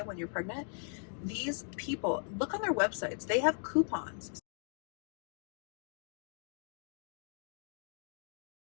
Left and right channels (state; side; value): silent; right; 52 dB below the other